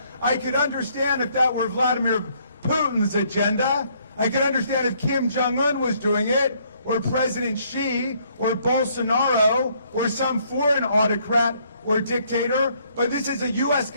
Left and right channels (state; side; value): inverted; both; correlation -0.67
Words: I could understand if that were Vladimir Putin's agenda. I could understand if Kim Jong-un was doing it, or President Xi, or Bolsonaro, or some foreign autocrat or dictator, but this is a U.S.